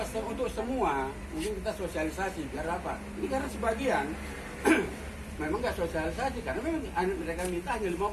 Kalau untuk semua, mungkin kita sosialisasi. Biar apa? Ini karena sebagian memang nggak sosialisasi. Karena memang mereka minta hanya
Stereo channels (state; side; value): identical; both; correlation 1.00